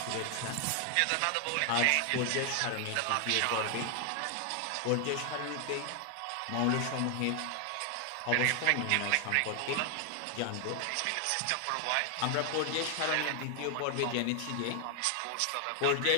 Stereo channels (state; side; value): different; both; correlation 0.00